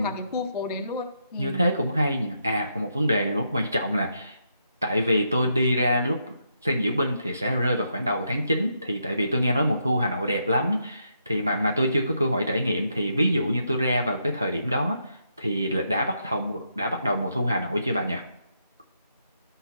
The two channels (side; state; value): both; inverted; correlation -0.79